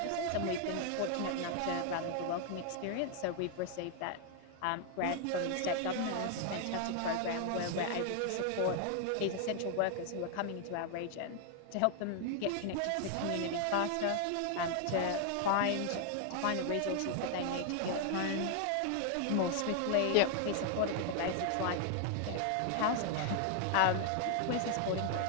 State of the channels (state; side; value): different; both; correlation 0.00